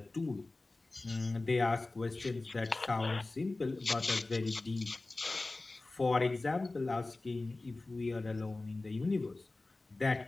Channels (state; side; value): quieter; right; 3.2 dB